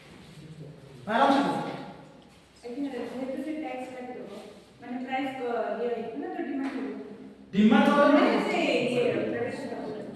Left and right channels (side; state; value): both; identical; correlation 1.00